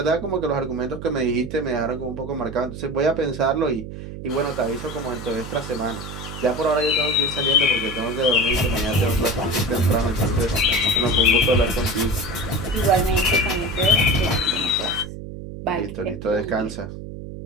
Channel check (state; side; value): noise; right; hum, 10 dB below the sound